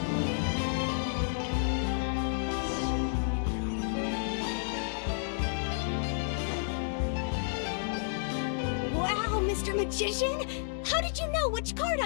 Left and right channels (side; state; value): right; silent; digital silence